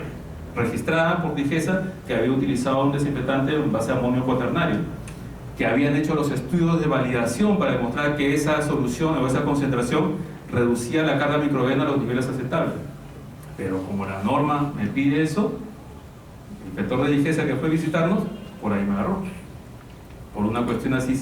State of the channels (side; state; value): both; identical; correlation 1.00